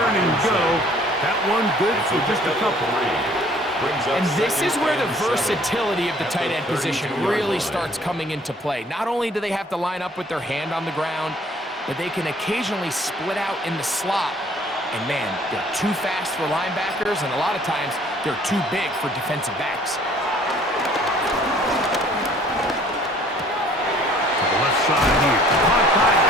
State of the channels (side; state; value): both; normal; correlation 0.56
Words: and go. That one good for just a couple. And this is where the versatility of the tight end position really starts coming into play. Not only do they have to line up with their hand on the ground, but they can occasionally split out in the slot. And man, they're too fast for linebackers, and a lot of times they're too big for defensive backs. Left side here, caught by